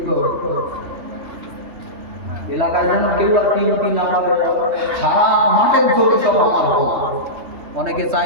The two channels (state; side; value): late; left; 3.2 ms